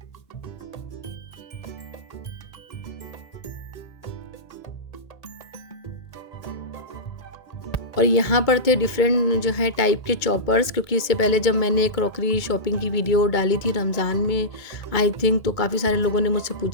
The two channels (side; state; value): right; late; 2.2 ms